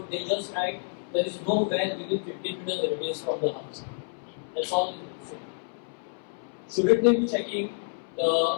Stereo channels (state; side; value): silent; right; 59 dB below the other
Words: they just write there is no well within 15 meters radius from the house. That's all they say. Shouldn't they be checking